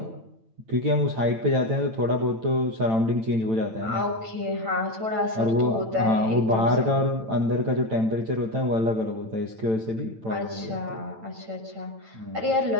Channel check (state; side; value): late; left; 9.0 ms